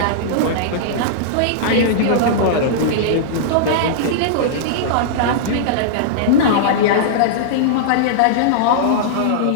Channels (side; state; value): both; different; correlation -0.02